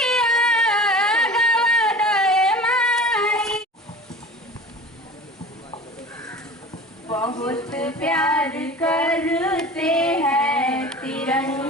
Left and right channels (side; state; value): both; normal; correlation 0.38